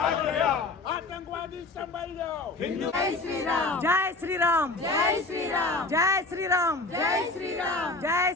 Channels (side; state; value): right; quieter; 3.2 dB